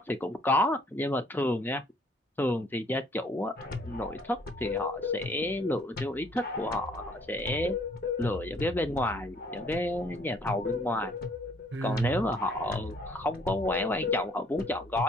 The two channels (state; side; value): normal; both; correlation 0.61